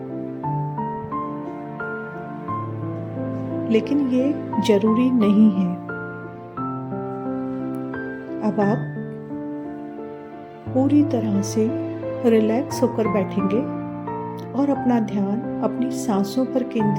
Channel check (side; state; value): both; identical; correlation 1.00